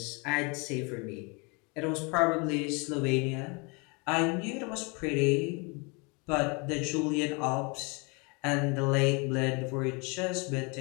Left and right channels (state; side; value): quieter; right; 30.9 dB